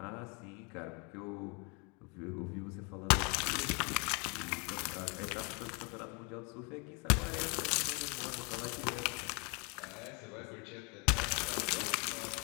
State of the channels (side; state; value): right; quieter; 32.5 dB